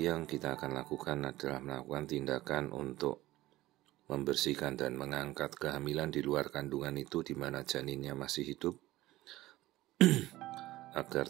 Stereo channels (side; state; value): left; quieter; 16.9 dB